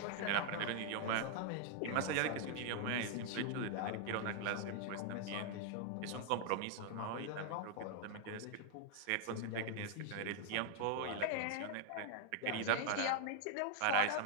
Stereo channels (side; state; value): both; different; correlation 0.00